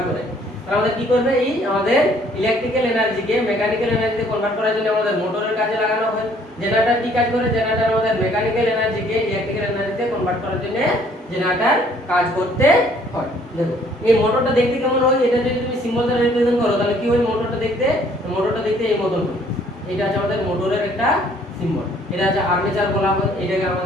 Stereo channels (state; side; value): normal; both; correlation 0.61